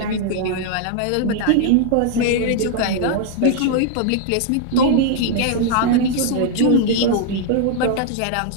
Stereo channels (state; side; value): different; both; correlation 0.00